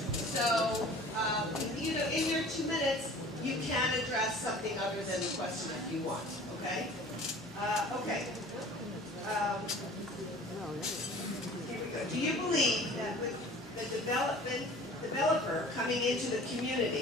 So In your 2 minutes, you can address something other than the question if you want, okay? Okay. Here we go. Do you believe that with the developer coming into the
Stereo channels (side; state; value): both; normal; correlation 0.45